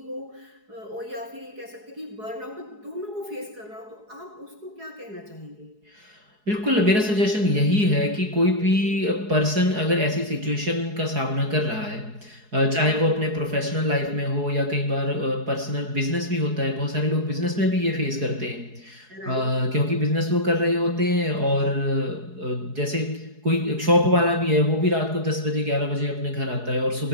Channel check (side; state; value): left; late; 4.7 ms